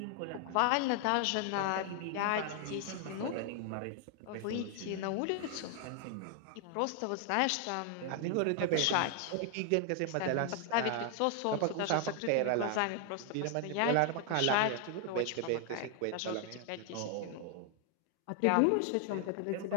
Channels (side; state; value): both; different; correlation 0.00